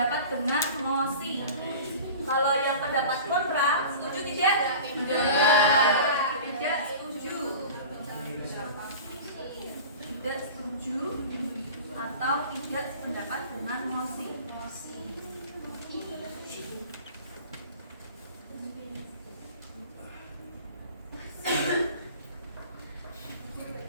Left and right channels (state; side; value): inverted; both; correlation -0.38